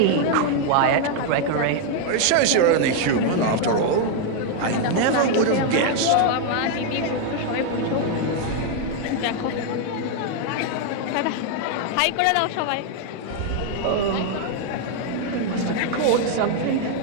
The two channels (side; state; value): both; different; correlation 0.00